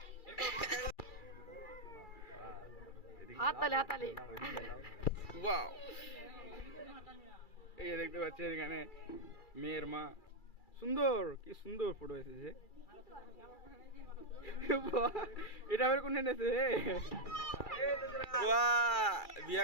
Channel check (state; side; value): late; right; 2.3 ms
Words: হাততালি ওয়াও, এই যে দেখতে পাচ্ছেন এখানে মেয়ের মা। সুন্দর, কি সুন্দর ফটো এসেছে। এটা আবার কোন এনেছে? বাহ,